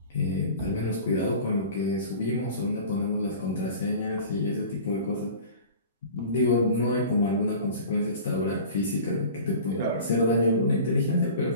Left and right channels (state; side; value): inverted; both; correlation -0.40